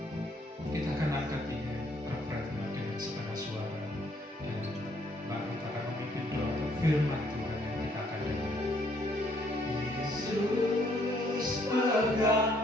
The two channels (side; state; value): both; normal; correlation 0.67